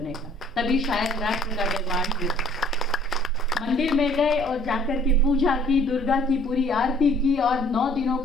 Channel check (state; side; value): normal; both; correlation 0.56